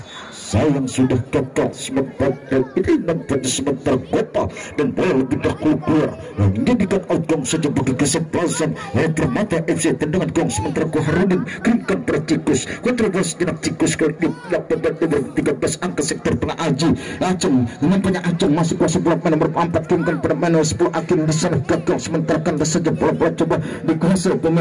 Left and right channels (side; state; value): both; identical; correlation 1.00